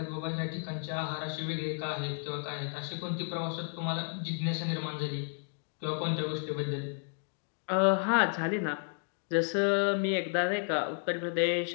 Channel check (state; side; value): silent; right; 56 dB below the other